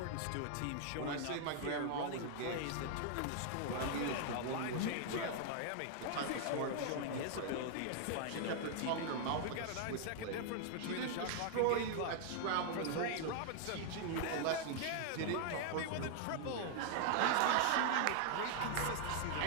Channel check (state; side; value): different; both; correlation 0.00